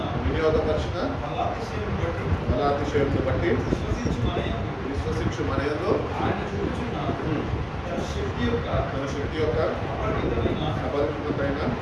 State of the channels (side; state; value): both; identical; correlation 1.00